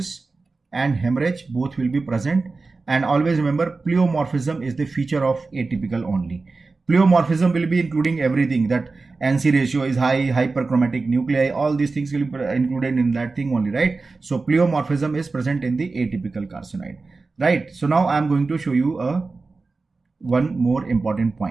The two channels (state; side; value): quieter; left; 3.9 dB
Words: and hemorrhage, both will be present. And always remember pleomorphism is the feature of atypical only. Pleomorphism will be including everything, that NC ratio is high, hyperchromatic nuclei, all these things will be included in that thing only, right? So pleomorphism is present in the atypical carcinoid, right? So now I am going to show you one more important